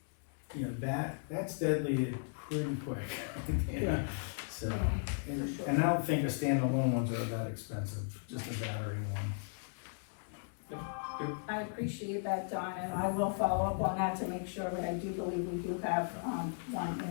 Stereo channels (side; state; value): right; silent; digital silence